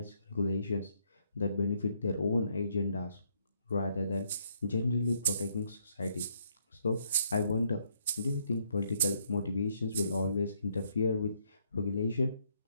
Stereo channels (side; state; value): both; inverted; correlation -0.71